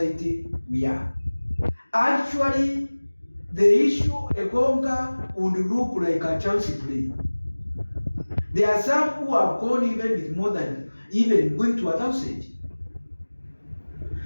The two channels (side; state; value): both; inverted; correlation -1.00